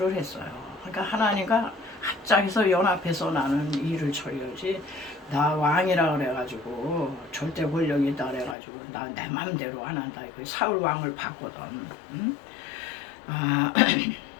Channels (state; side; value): drops out; right; at 8.6 s